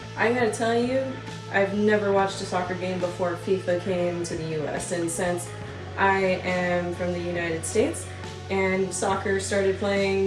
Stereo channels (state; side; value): identical; both; correlation 1.00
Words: I gotta tell you, I've never watched a soccer game before FIFA came to the US, and since I am from the United States and soccer started